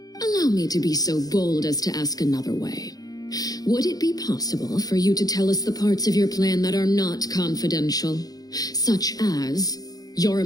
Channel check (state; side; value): late; right; 0.18 ms